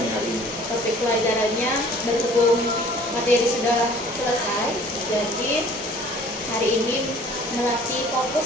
hari ini? Topik pelajarannya berhubung materi sudah selesai, jadi hari ini melatih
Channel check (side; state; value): both; normal; correlation 0.51